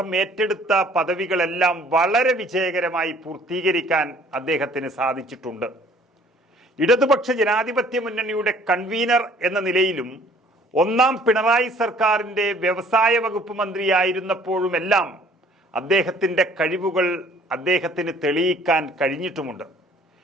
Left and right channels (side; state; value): both; normal; correlation 0.56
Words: ഏറ്റെടുത്ത പദവികളെല്ലാം വളരെ വിജയകരമായി പൂർത്തീകരിക്കാൻ അദ്ദേഹത്തിന് സാധിച്ചിട്ടുണ്ട്. ഇടതുപക്ഷ ജനാധിപത്യ മുന്നണിയുടെ കൺവീനർ എന്ന നിലയിലും ഒന്നാം പിണറായി സർക്കാരിൻ്റെ വ്യവസായ വകുപ്പ് മന്ത്രിയായിരുന്നപ്പോഴുമെല്ലാം അദ്ദേഹത്തിൻ്റെ കഴിവുകൾ അദ്ദേഹത്തിന് തെളിയിക്കാൻ കഴിഞ്ഞിട്ടുമുണ്ട്.